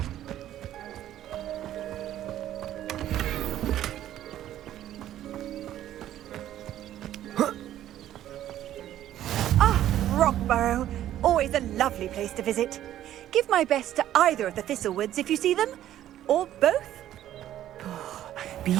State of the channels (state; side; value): quieter; left; 12.3 dB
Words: Rockborough. Always a lovely place to visit. Give my best to either of the Thistlewoods if you see them. Or both. Be